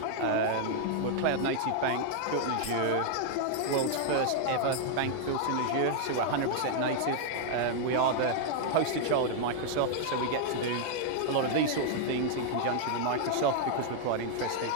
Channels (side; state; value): both; different; correlation 0.00